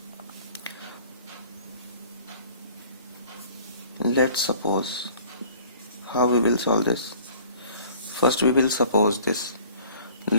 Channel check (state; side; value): inverted; both; correlation -0.51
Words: Let's suppose, how we will solve this. First we will suppose this.